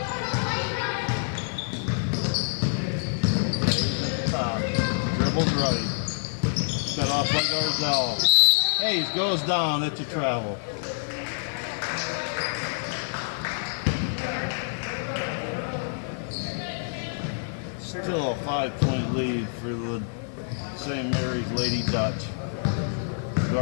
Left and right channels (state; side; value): silent; right; digital silence